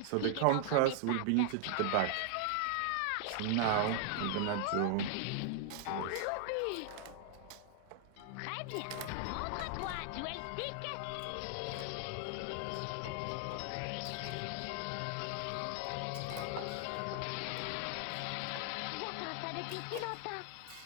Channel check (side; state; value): both; different; correlation 0.00